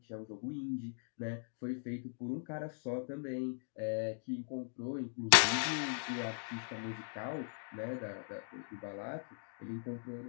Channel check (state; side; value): silent; right; digital silence